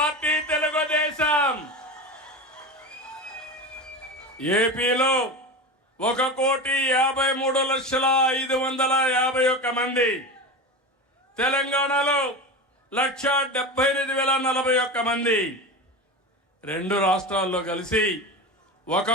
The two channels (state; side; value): normal; both; correlation 0.25